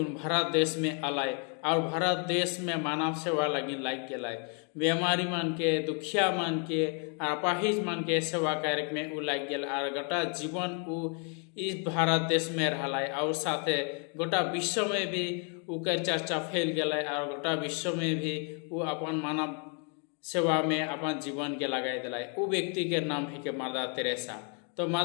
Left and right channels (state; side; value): quieter; right; 39.7 dB